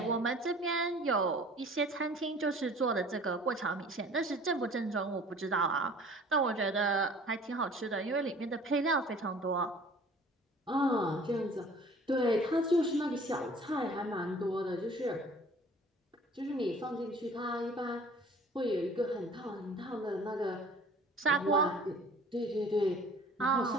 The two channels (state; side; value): normal; both; correlation 0.49